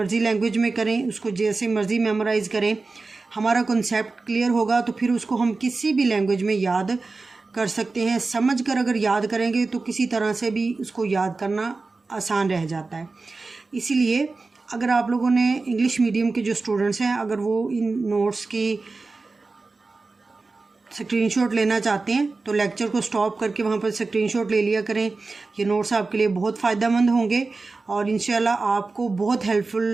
लैंग्वेज में करें, उसको जैसे मर्ज़ी मेमोराइज़ करें, हमारा कॉन्सेप्ट क्लियर होगा तो फिर उसको हम किसी भी लैंग्वेज में याद कर सकते हैं। समझ कर अगर याद करेंगे तो किसी तरह से भी उसको याद करना आसान रह जाता है। इसीलिए अगर आप लोगों ने इंग्लिश मीडियम के जो स्टूडेंट्स हैं, अगर वो इन नोट्स की स्क्रीनशॉट लेना चाहते हैं तो लेक्चर को स्टॉप करके वहाँ पर स्क्रीनशॉट ले लिया करें। ये नोट्स आपके लिए बहुत फ़ायदेमंद होंगे और इंशाल्लाह आपको बहुत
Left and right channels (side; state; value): left; quieter; 3.8 dB